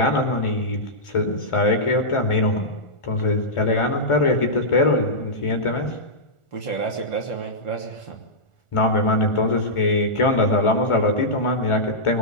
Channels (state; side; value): late; right; 1.4 ms